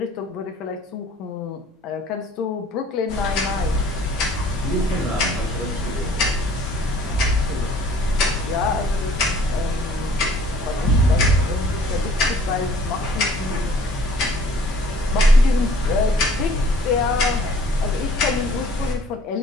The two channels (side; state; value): both; normal; correlation 0.55